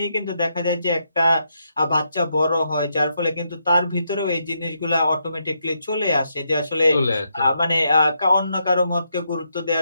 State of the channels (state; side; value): inverted; both; correlation -0.80